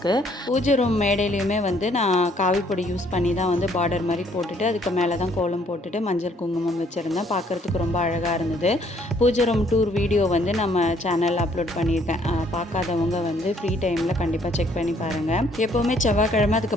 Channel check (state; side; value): normal; both; correlation 0.65